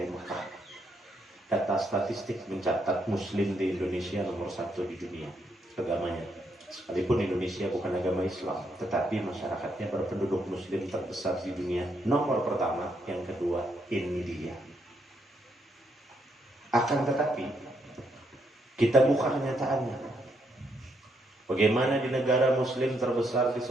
Mekah. Data statistik mencatat muslim di Indonesia nomor 1 di dunia agamanya. Sekalipun Indonesia bukan agama Islam, tetapi masyarakatnya berpenduduk muslim terbesar di dunia. Nomor pertama, yang kedua India. Akan tetapi kita buka kenyataannya. Bagaimana di negara muslim terbesar di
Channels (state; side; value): normal; both; correlation 0.76